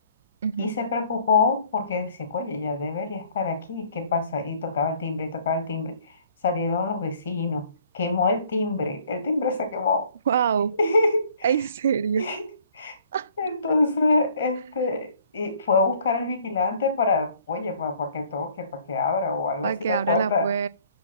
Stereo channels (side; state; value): both; inverted; correlation -0.58